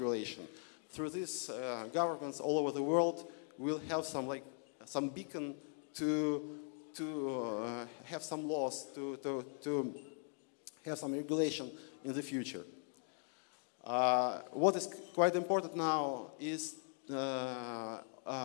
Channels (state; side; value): silent; right; 51 dB below the other